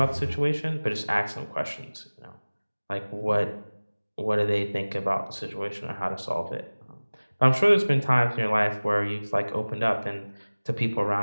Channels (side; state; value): both; inverted; correlation -1.00